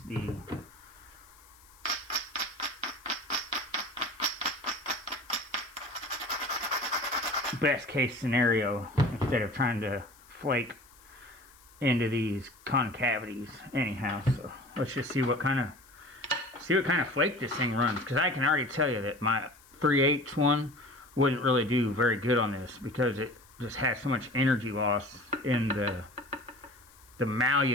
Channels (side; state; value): left; noise; hiss, 26 dB below the sound